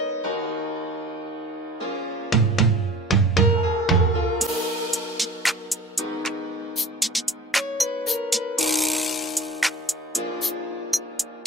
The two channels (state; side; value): normal; both; correlation 0.42